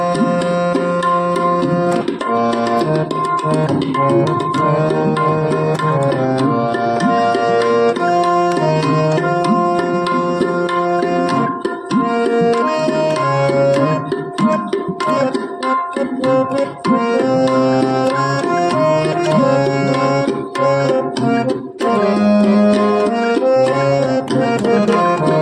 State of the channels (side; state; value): both; identical; correlation 1.00